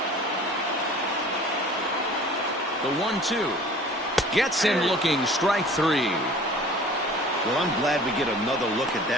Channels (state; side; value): normal; both; correlation 0.46